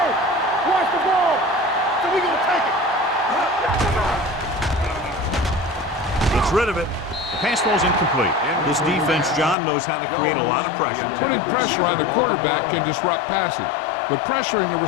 watch the ball. So we gonna take it. Gets rid of it. The pass ball's incomplete. This defense, John, knows how to create a lot of pressure. Putting pressure on the quarterback can disrupt passing, but pressuring the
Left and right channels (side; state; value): right; drops out; at 9.6 s